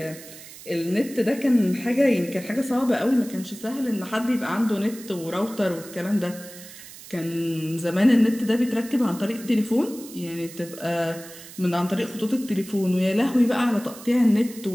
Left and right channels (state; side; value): noise; right; hiss, 16 dB below the sound